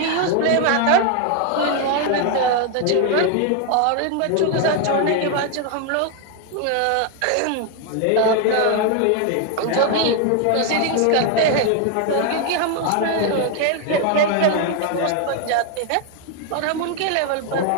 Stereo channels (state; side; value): different; both; correlation 0.01